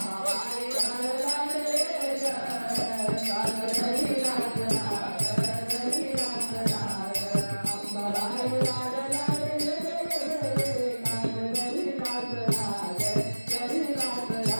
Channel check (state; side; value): inverted; both; correlation -1.00